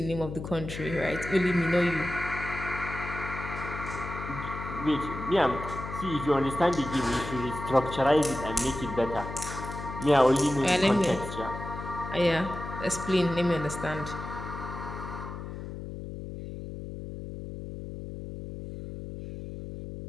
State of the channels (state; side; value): noise; left; hum, 8 dB below the sound